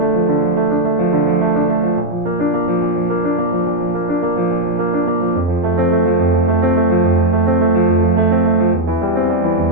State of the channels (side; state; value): left; late; 11 ms